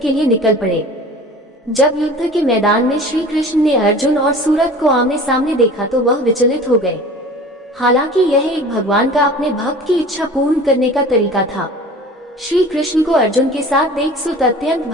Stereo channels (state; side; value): normal; both; correlation 0.41